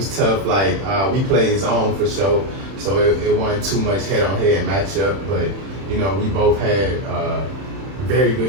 tough. Like we played his own for sure, so it wasn't too much head-on-head matchup. But we both had very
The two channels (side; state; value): left; late; 31 ms